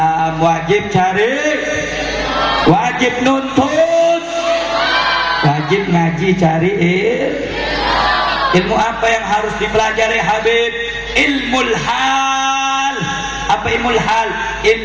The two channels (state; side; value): identical; both; correlation 1.00